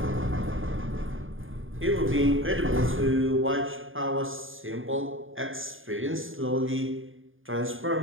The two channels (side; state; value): left; late; 0.59 ms